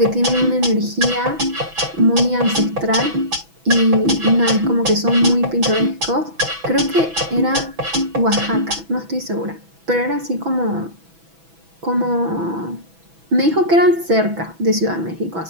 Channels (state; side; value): late; left; 6.1 ms